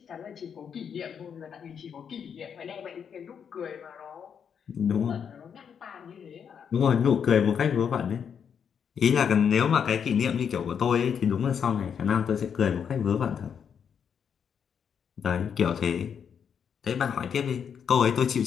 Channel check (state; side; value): quieter; right; 7.5 dB